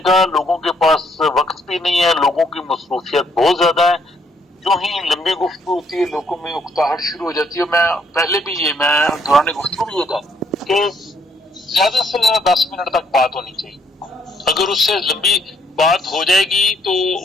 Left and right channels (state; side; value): normal; both; correlation 0.69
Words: کا لوگوں کے پاس وقت بھی نہیں ہے، لوگوں کی مصروفیت بہت زیادہ ہے. جو ہی لمبی گفتگو ہوتی ہے لوگوں میں اکتاہٹ شروع ہو جاتی ہے. میں پہلے بھی میں دوران گفتگو بھی یہ تھا کہ زیادہ سے زیادہ 10 منٹ تک بات ہونی چاہیے. اگر اس سے لمبی بات ہو جائے گی تو